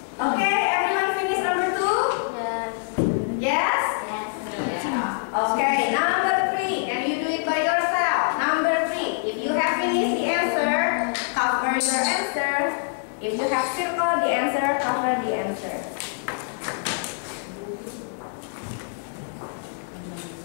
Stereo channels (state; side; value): silent; right; digital silence